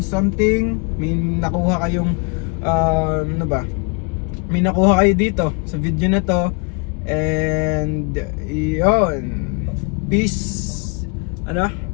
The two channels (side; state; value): right; quieter; 34.2 dB